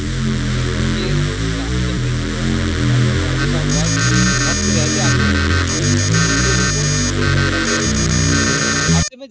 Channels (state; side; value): identical; both; correlation 1.00